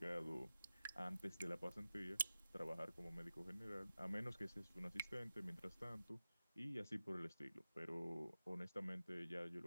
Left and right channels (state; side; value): inverted; both; correlation -0.94